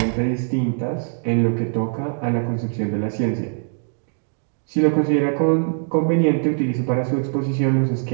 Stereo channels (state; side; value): silent; left; digital silence